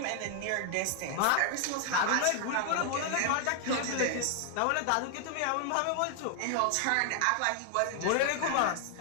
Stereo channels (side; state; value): both; different; correlation 0.00